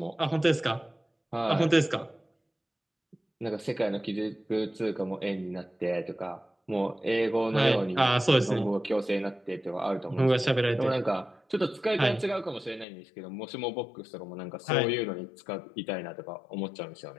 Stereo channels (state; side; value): drops out; right; at 12.9 s